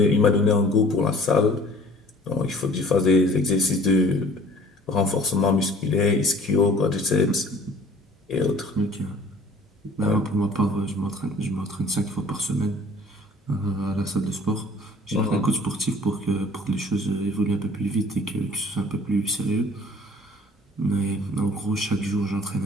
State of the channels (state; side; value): normal; both; correlation 0.51